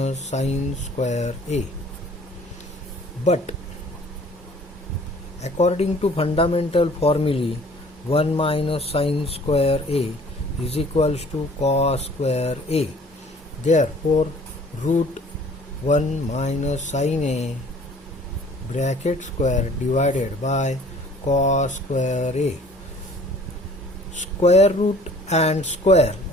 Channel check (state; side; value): normal; both; correlation 0.52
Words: sin square a. But according to fundamental formulae, 1 minus sin square a is equals to cos square a. Therefore root 1 minus sin a bracket square divided by cos square a. Square root and square